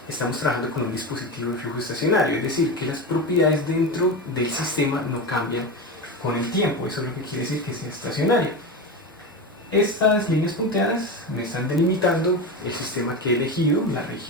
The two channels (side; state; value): both; normal; correlation 0.21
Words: estamos trabajando con un dispositivo de flujo estacionario, es decir, que las propiedades dentro del sistema no cambian con el tiempo. Eso es lo que quiere decir que sea estacionario. Estas líneas punteadas me están delimitando el sistema que he elegido, la